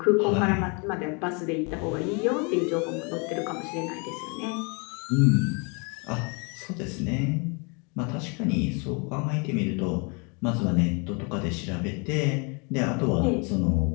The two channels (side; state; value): right; quieter; 33.3 dB